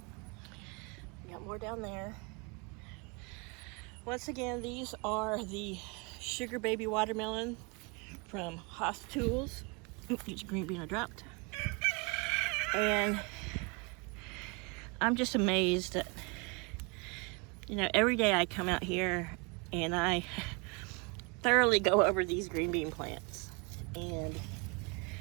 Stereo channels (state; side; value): quieter; left; 30.8 dB